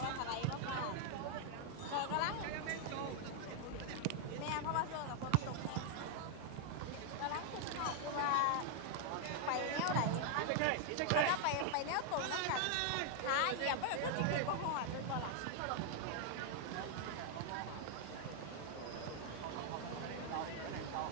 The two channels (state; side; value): different; both; correlation 0.00